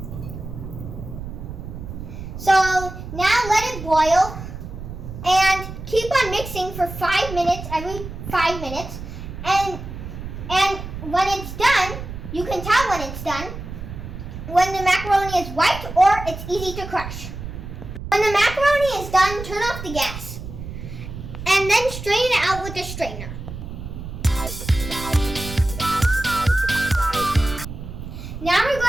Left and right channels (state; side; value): noise; right; rumble, 9 dB below the sound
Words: So now let it boil and keep on mixing for 5 minutes, every 5 minutes. And when it's done, you can tell when it's done when the macaroni is white or it's easy to crush. When the macaroni is done, turn off the gas and then strain it out with a strainer. Now we're